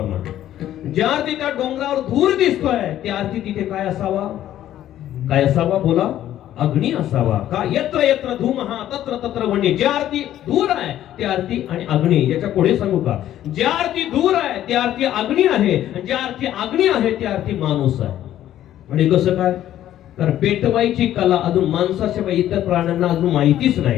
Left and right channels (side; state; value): right; quieter; 12.3 dB